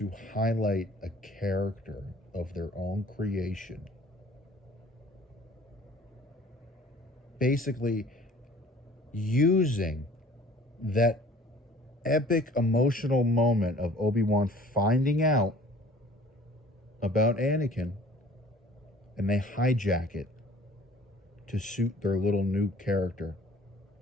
highlight a character of their own creation. Basically, using that epic emotional moment of Obi-Wan finding out about Anakin, and they hijack it to suit their little new character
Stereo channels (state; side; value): normal; both; correlation 0.50